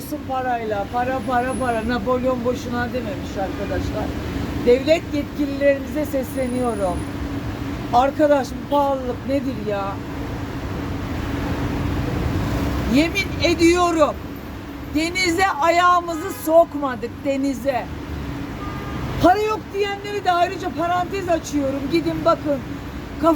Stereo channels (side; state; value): both; identical; correlation 1.00